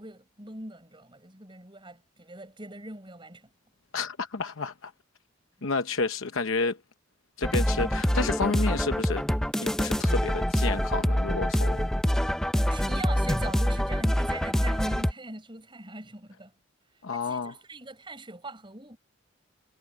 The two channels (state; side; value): normal; both; correlation 0.73